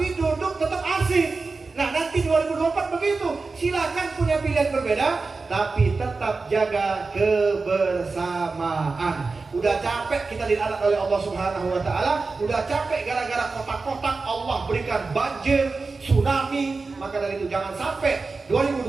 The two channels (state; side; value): quieter; left; 4.0 dB